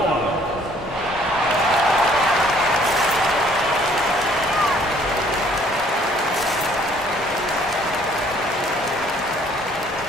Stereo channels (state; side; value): normal; both; correlation 0.60